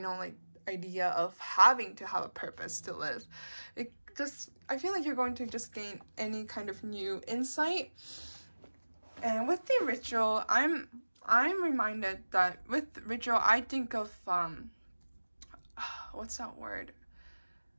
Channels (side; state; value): both; inverted; correlation -1.00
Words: idea of having to have a purpose to live. I feel like you're going to just gain any kind of new insight. And with the ritual, I'm reminded that with ritual, I think of what's that word?